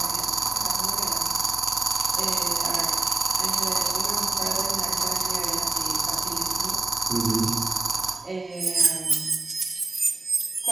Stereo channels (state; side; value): quieter; left; 3.2 dB